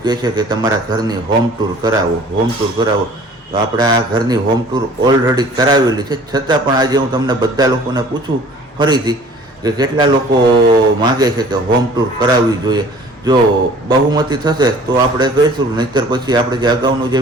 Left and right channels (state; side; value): normal; both; correlation 0.50